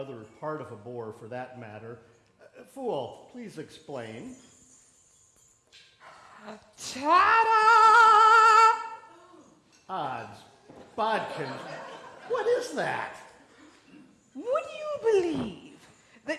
part of a boar for that matter. Fool, please explain. Ta-da! Odds, bodkins, what is that? Would you believe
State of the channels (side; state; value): both; identical; correlation 1.00